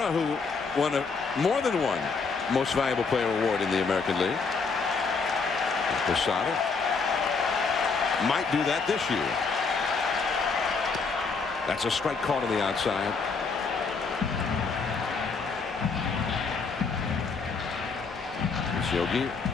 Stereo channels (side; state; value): right; quieter; 4.8 dB